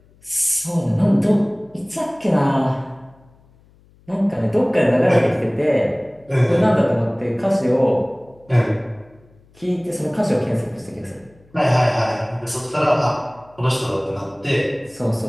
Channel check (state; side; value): noise; left; hum, 30 dB below the sound